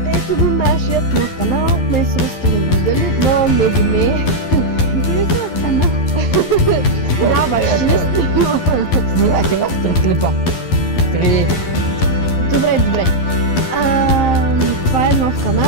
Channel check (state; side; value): late; right; 11 ms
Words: ето го нашият нов канал. Днес сте ме виждали, но не ви не. Виждали се в канал? Да, баче, не снимам. Снимайте в 3 клипа. 3. Добре. Това е нов